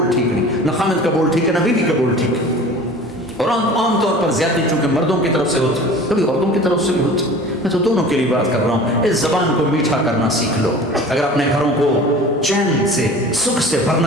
ٹھیک نہیں، نہ خامد کا بول ٹھیک ہے نہ بیوی کا بول ٹھیک ہے، اور عام طور پر زیادتی چونکہ مردوں کی طرف سے ہوتی، کبھی عورتوں کی طرف سے بھی ہوتی، میں تو دونوں کے لیے بات کر رہا ہوں۔ اس زبان کو میٹھا کرنا سیکھ لو، اگر اپنے گھروں کو چین سے سکھ سے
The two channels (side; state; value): both; normal; correlation 0.41